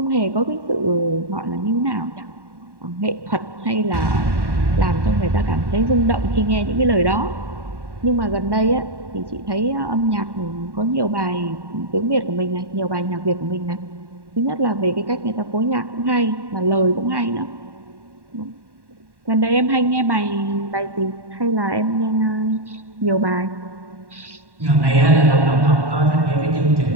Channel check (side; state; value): left; late; 1.1 ms